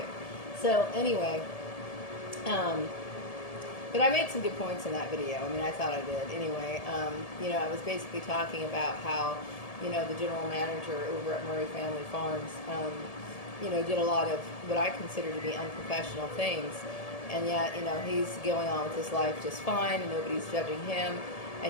So, anyway, but I made some good points in that video. I mean, I thought I did. Anyway, I was basically talking about how, the general manager over at Murray Family Farms, did a lot of what I consider to be unprofessional things. And yet, he's going on with his life just fine and nobody's judging him.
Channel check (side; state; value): right; late; 1.7 ms